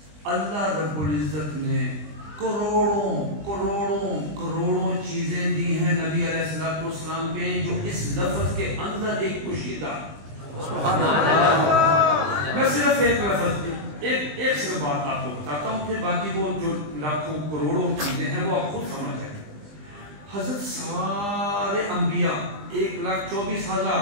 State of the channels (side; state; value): left; late; 20 ms